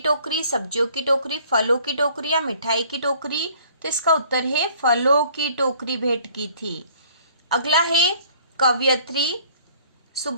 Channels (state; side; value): inverted; both; correlation -0.56